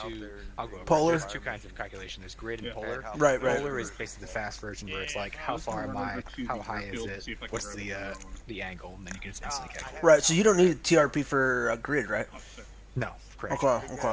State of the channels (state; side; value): identical; both; correlation 1.00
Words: to Polar. There's two kinds of calculation. There's grid and polar. Right. Polar is basically the fast version where it's like, how far am I, how high is it, what's the angle, and then you can just instantly calculate. Right, so you don't need a TRP for a grid, right? No, correct.